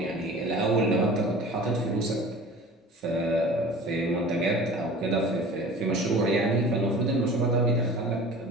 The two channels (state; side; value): normal; both; correlation 0.41